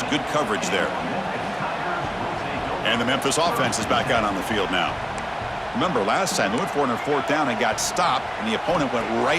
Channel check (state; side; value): identical; both; correlation 1.00